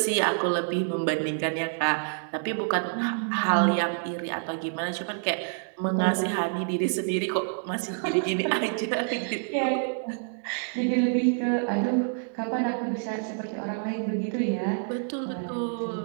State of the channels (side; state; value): left; silent; digital silence